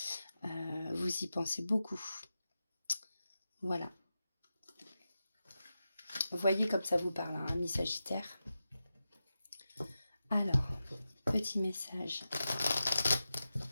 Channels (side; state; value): both; inverted; correlation -0.92